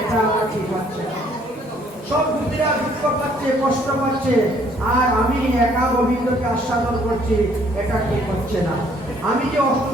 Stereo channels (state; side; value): normal; both; correlation 0.63